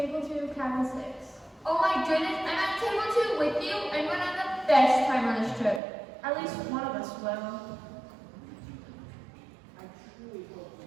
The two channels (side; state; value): left; drops out; at 5.8 s